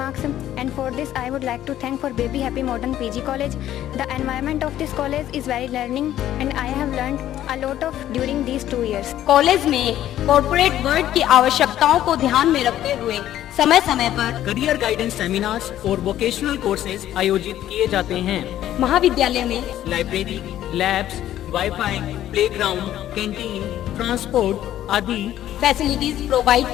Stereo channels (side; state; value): right; quieter; 12.4 dB